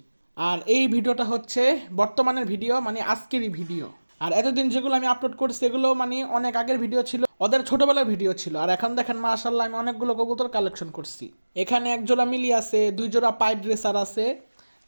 আর এই ভিডিওটা হচ্ছে বর্তমানের ভিডিও, মানে আজকেরই ভিডিও। আর এতদিন যেগুলো আমি আপলোড করছি এগুলো মানে অনেক আগের ভিডিও ছিল, ওদের ছোটবেলার ভিডিও ছিল। আর এখন দেখেন মাশাআল্লাহ, আমি অনেকগুলো কবুতর কালেকশন করছি। এখানে এক জোড়া মিলি আছে, দুই জোড়া পাইড রেসার আছে,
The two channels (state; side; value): inverted; both; correlation -1.00